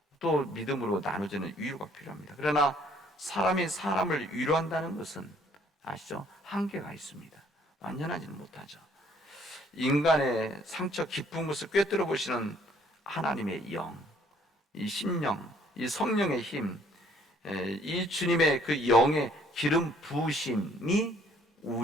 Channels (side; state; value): both; normal; correlation 0.62